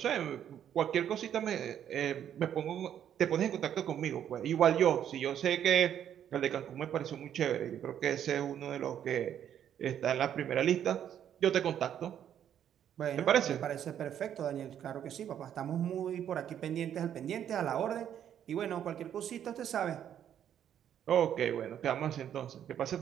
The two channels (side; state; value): left; quieter; 9.8 dB